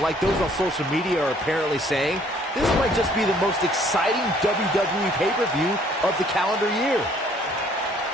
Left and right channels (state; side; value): normal; both; correlation 0.60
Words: like those on social media are apparently saying, this might just be the most exciting WWE pay-per-view of the calendar year.